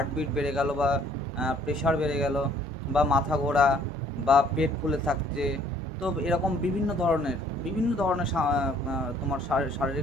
বেড়ে গেল, বা প্রেশার বেড়ে গেল, বা মাথা ঘোরা, বা পেট ফুলে থাকছে। তো এরকম বিভিন্ন ধরনের তোমার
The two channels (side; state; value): both; normal; correlation 0.60